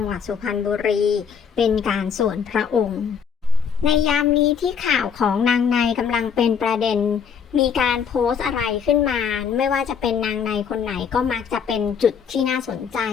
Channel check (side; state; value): right; quieter; 7.0 dB